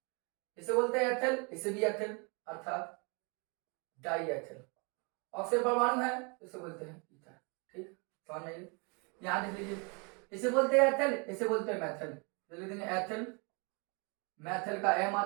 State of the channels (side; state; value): left; quieter; 32.9 dB